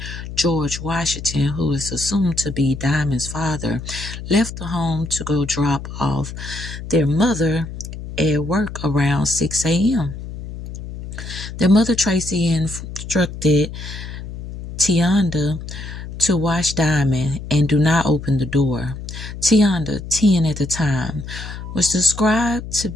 George Washington, who is assumed to be Diamond's father, left the home to go drop off their mother at work around 6 a.m. Their mother, Tracy, instructed Tionda to watch Diamond and do not open the door. Tionda, 10 at the time, was described to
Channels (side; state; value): left; noise; hum, 10 dB below the sound